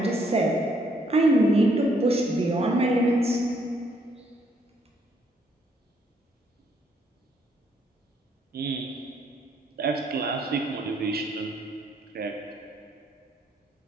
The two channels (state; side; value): normal; both; correlation 0.70